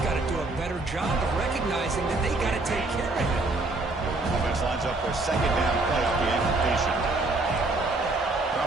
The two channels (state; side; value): quieter; left; 3.1 dB